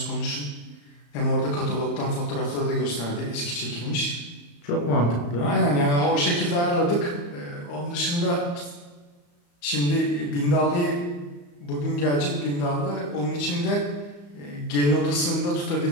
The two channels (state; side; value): late; right; 35 ms